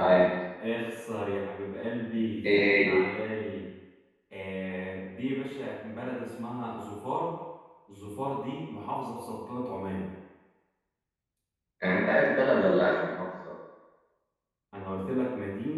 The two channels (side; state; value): both; identical; correlation 1.00